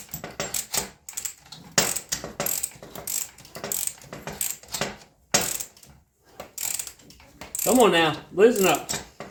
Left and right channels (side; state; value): both; identical; correlation 1.00